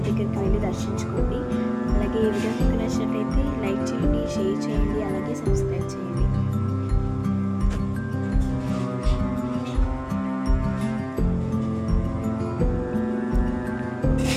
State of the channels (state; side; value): identical; both; correlation 1.00